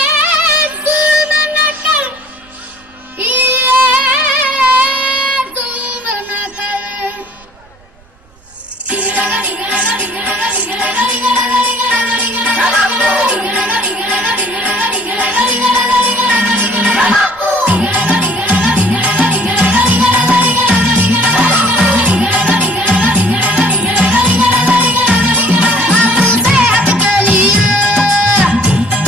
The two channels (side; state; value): right; noise; rumble, 29 dB below the sound